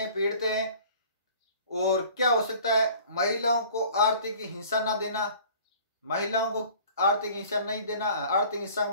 पीटते हैं। और क्या हो सकता है? महिलाओं को आर्थिक हिंसा ना देना, महिलाओं को आर्थिक हिंसा नहीं देना। आर्थिक हिंसा का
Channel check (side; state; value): both; inverted; correlation -0.49